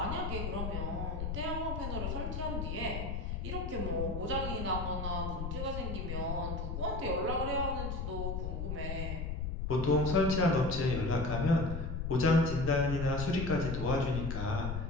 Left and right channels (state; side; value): noise; left; rumble, 3 dB below the sound